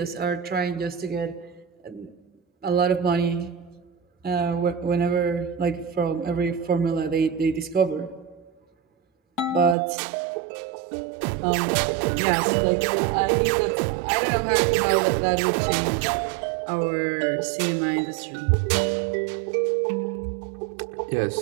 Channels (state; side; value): drops out; left; at 9.8 s